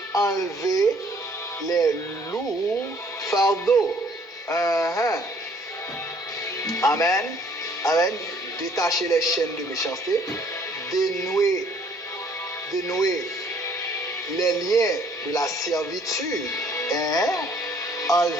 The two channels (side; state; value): both; normal; correlation 0.60